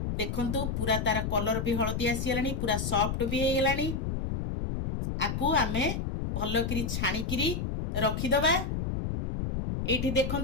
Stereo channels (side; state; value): left; noise; rumble, 2 dB below the sound